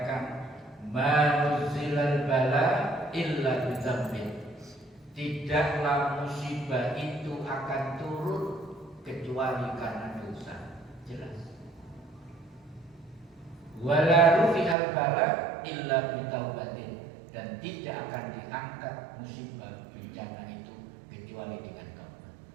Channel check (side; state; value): left; drops out; at 14.8 s